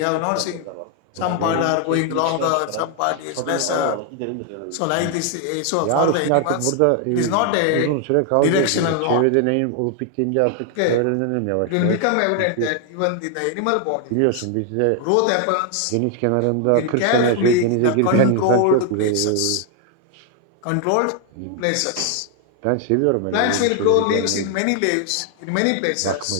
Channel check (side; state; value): both; different; correlation 0.00